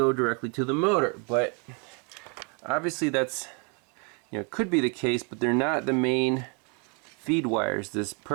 directly to the motor, but obviously that's, could be the case, but they're not the main feed wires, this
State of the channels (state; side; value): quieter; left; 35.4 dB